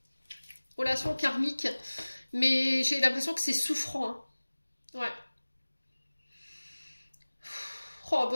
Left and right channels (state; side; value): inverted; both; correlation -1.00